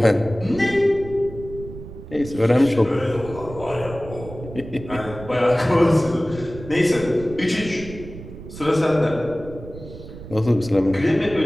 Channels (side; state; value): right; noise; rumble, 14 dB below the sound